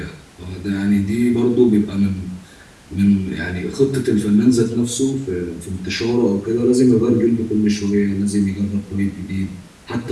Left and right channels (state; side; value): identical; both; correlation 1.00